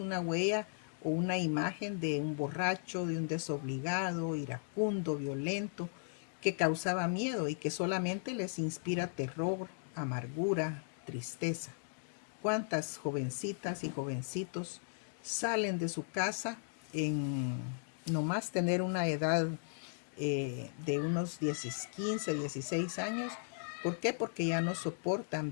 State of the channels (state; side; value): silent; right; digital silence